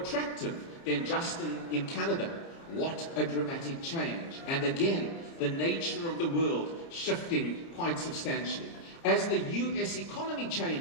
than Justin in Canada. What a dramatic change. And again, the nature of the world shifting quite substantially. As the US economy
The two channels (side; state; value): right; late; 30 ms